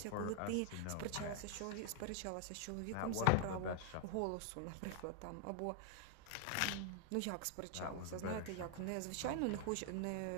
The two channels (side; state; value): both; different; correlation 0.00